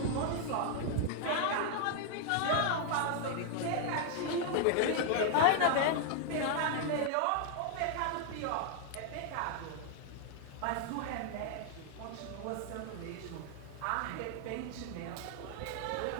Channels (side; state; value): both; different; correlation 0.00